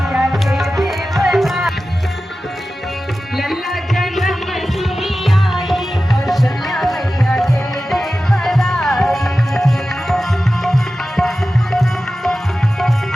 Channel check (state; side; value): normal; both; correlation 0.94